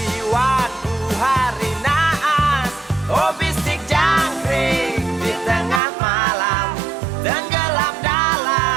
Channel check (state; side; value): drops out; left; at 5.8 s